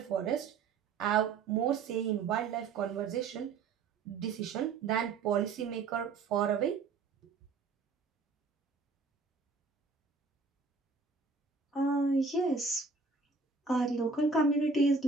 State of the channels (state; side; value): quieter; left; 4.5 dB